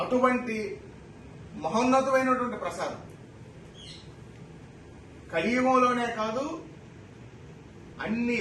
అటువంటి మహోన్నతమైనటువంటి ప్రసాదం కలియుగంలోనే కాదు, అన్ని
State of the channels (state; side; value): identical; both; correlation 1.00